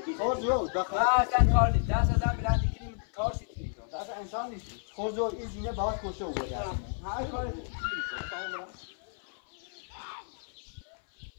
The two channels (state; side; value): silent; right; 57 dB below the other